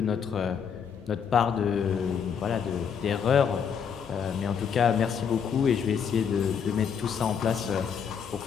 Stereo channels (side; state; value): right; quieter; 7.2 dB